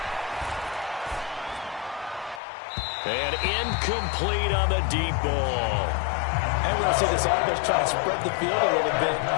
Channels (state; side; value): drops out; right; at 2.4 s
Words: And incomplete on the deep ball. And we're going to see this offense try to spread the field a little bit